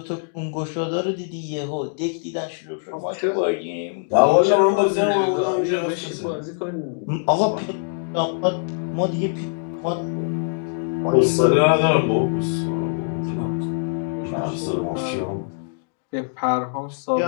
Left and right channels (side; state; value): right; silent; digital silence